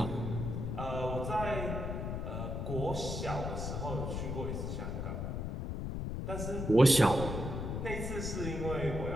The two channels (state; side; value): noise; left; rumble, 3 dB below the sound